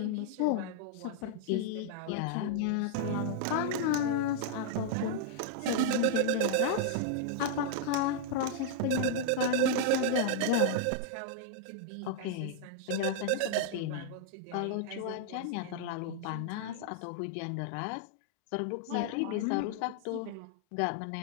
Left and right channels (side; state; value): both; different; correlation -0.01